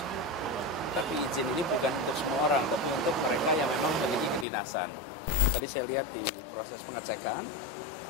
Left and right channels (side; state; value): right; drops out; at 4.5 s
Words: Tapi izin ini bukan untuk semua orang, tapi untuk mereka yang memang memiliki kedinasan. Tadi saya lihat di proses pengecekan,